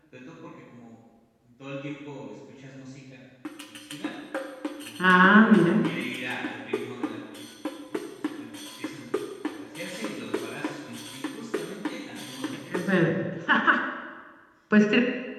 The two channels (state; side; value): identical; both; correlation 1.00